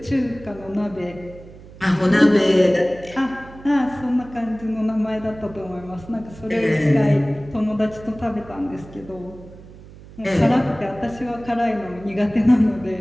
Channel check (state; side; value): noise; right; hum, 19 dB below the sound